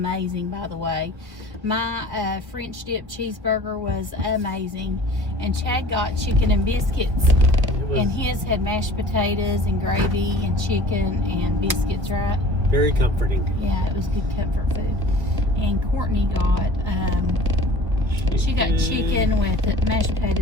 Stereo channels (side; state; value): left; late; 1.3 ms